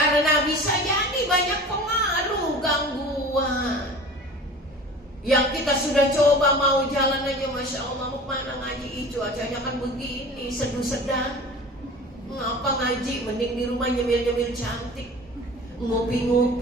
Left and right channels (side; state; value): both; normal; correlation 0.39